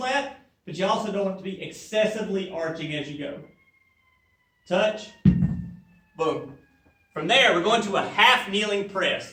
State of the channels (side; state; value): both; identical; correlation 1.00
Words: but you also don't want it to be excessively arching as you go. Touch, boom. From there, we're going to a half kneeling